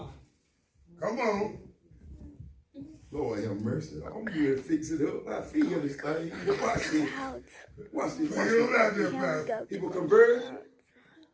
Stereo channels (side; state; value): both; identical; correlation 1.00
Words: Come on. Lord have mercy. I'm here to fix it up. I feel this thing. Watch this. Watch this. Feel it out there, Pastor. He was converted.